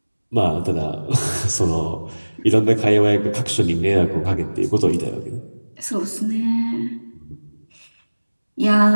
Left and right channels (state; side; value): inverted; both; correlation -1.00